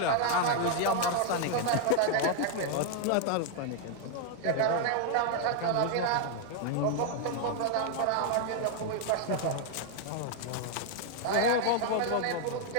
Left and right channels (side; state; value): both; different; correlation 0.00